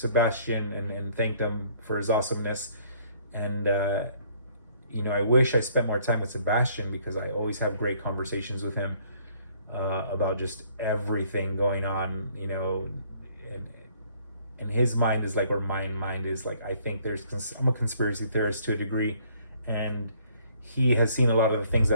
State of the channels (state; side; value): inverted; both; correlation -0.62